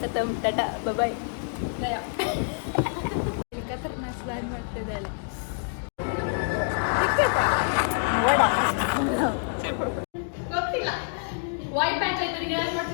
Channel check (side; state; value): right; silent; digital silence